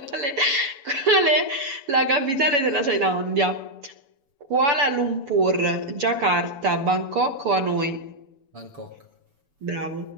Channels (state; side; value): late; left; 7.0 ms